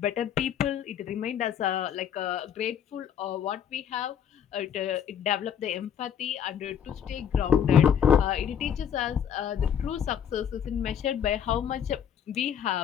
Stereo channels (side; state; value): right; quieter; 8.7 dB